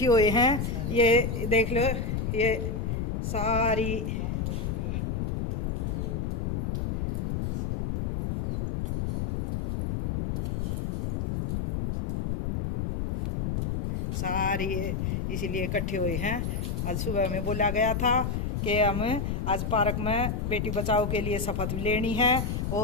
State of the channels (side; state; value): left; noise; rumble, 1 dB below the sound